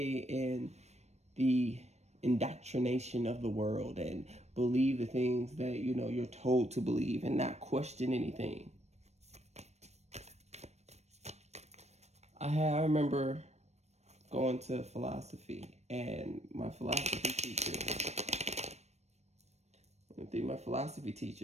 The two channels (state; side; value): late; left; 0.32 ms